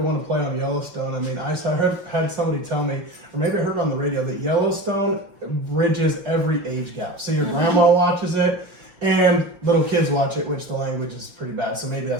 want to play on Yellowstone, I mean, I had somebody tell me, or maybe I heard on the radio, that Yellowstone bridges every age gap. So your grandma watches it, and little kids watch it, which the language is pretty bad, so maybe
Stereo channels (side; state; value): left; late; 5.7 ms